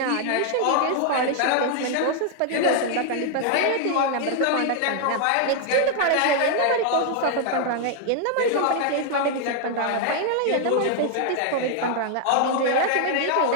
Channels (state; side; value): different; both; correlation 0.00